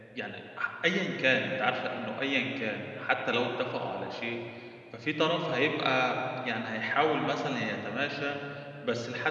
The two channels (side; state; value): both; identical; correlation 1.00